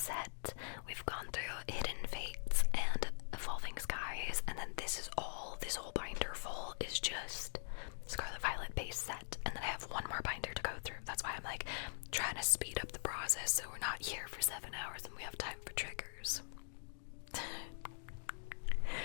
We've gone through Hidden Fates and Evolving Skies, and then this whole binder full is just Scarlet Violet base set, and then I have one more binder to go through. That's why I'm like trying to speed up the process so we're not here for 7 hours and we have time for triggers.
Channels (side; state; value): right; silent; digital silence